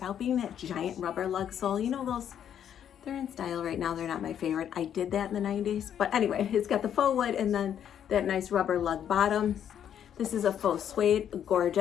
being that giant rubber lug sole. You know those, they're in style right now. They're not my favorite. I did that in the 90s. But anyway, it's got the faux wood and then that nice rubber lug bottom. This is a faux suede,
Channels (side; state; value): right; quieter; 9.4 dB